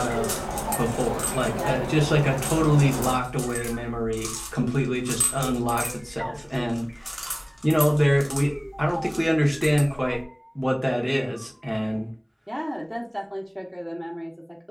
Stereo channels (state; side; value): identical; both; correlation 1.00